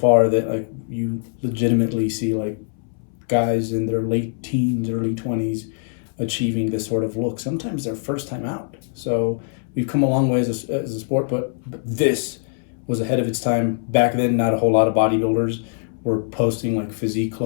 that like you legitimately see like guys in their late teens, early 20s achieving this sort of look. Sometimes their first time out. So we've come a long way as a sport, but this was ahead of its time. Back then, not a whole lot of bodybuilders were posting like physique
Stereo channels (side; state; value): right; silent; 62 dB below the other